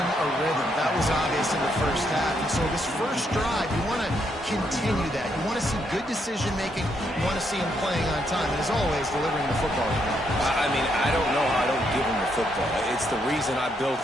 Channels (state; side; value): normal; both; correlation 0.76